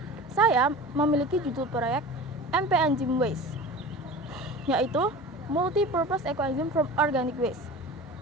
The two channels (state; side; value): normal; both; correlation 0.36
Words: Saya memiliki judul proyek MP-Enzyme Waste, yaitu Multi-Purpose Eco-Enzyme from Organic Waste,